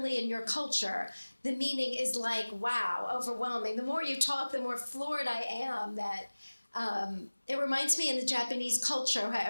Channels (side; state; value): both; inverted; correlation -1.00